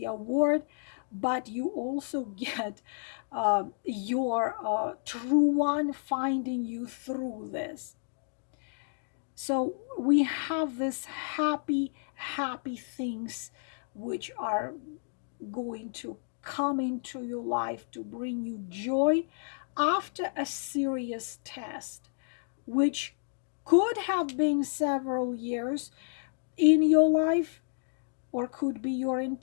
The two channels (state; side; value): silent; right; digital silence